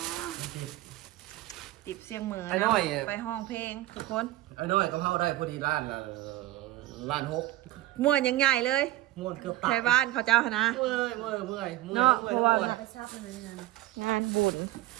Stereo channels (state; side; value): quieter; left; 16.1 dB